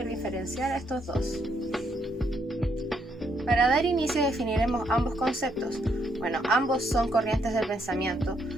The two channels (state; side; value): normal; both; correlation 0.74